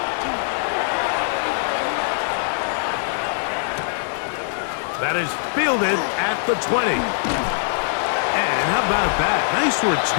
That is fielded at the 20. And how about that? Nice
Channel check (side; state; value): right; silent; digital silence